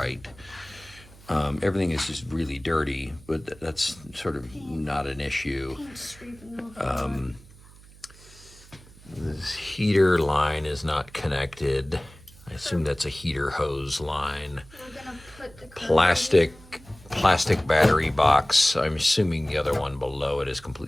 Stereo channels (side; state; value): right; noise; hum, 22 dB below the sound